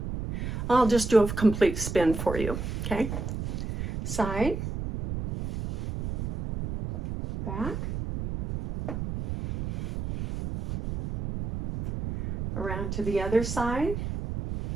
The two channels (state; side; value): noise; right; rumble, 5 dB below the sound